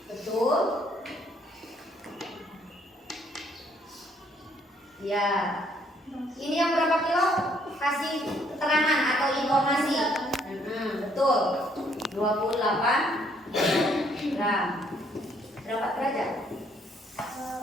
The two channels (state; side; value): normal; both; correlation 0.67